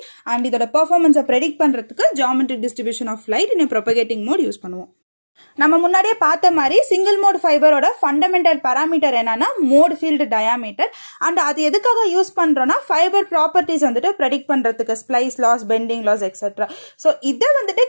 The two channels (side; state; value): both; inverted; correlation -1.00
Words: அண்ட் இதோட பெர்ஃபார்மன்ஸை ப்ரெடிக்ட் பண்ணுறதுக்கு geometric distribution of light in propagating mode use பண்ணுவோம். நம்ம முன்னாடியே பார்த்த மாதிரி சிங்கிள் மோட் ஃபைபரோட ஃபண்டமெண்டல் பேராமீட்டர் என்னன்னா மோட் ஃபீல்டு டயாமீட்டர். அண்ட் அது எதுக்காக யூஸ் பண்ணுறோன்னா ஃபைபர் ப்ராப்பர்ட்டிஸ் வந்துட்டு ப்ரெடிக்ட் பண்ணுறதுக்கு splice loss, bending loss etcetera. So இதை வந்துட்டு